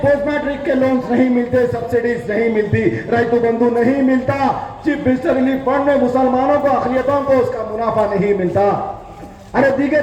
پوسٹ میٹرک کے لونز نہیں ملتے, سبسڈیز نہیں ملتی, ریتو بندھو نہیں ملتا, چیف منسٹر ریلیف فنڈ میں مسلمانوں کو, اقلیتوں کو اس کا منافع نہیں ملتا. ارے دیگر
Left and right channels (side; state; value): both; identical; correlation 1.00